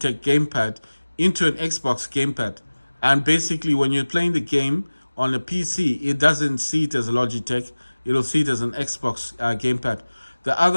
gamepad into an Xbox gamepad. And basically, when you're playing the game on a PC, it doesn't see it as a Logitech. It'll see it as an Xbox gamepad. The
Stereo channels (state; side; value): inverted; both; correlation -1.00